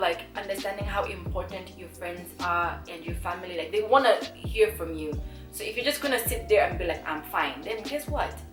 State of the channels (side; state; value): both; identical; correlation 1.00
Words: understanding how important your friends are and your family. Like, they want to hear from you. So if you're just gonna sit there and be like, I'm fine, then guess what?